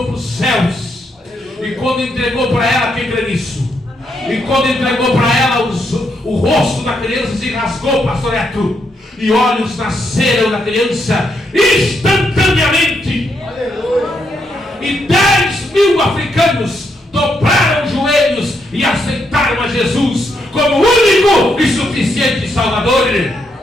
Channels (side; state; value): both; normal; correlation 0.79